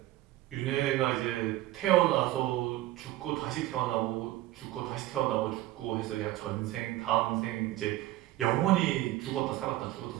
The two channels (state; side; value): quieter; left; 15.8 dB